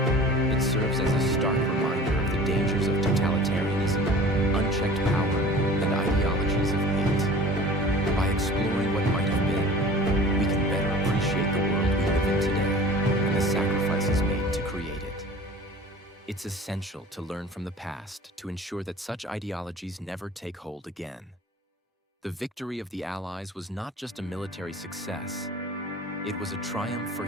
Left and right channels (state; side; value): normal; both; correlation 0.42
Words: It serves as a stark reminder of the dangers of totalitarianism, unchecked power, and ideologies of hate. By exploring what might have been, we can better appreciate the world we live in today and the sacrifices made to create it. It's essential to learn from the past to ensure that such ideologies never take hold again. The victory of the Allies was not just a military success. It was a triumph for